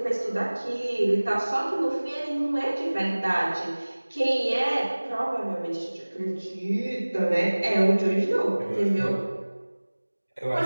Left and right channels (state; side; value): inverted; both; correlation -1.00